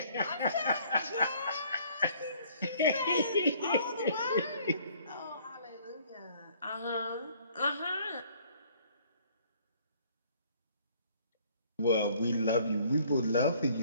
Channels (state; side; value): inverted; both; correlation -0.59